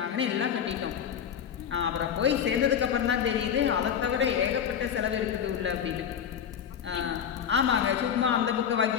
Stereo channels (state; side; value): quieter; right; 8.4 dB